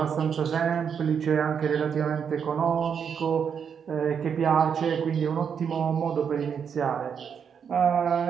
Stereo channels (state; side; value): quieter; left; 7.2 dB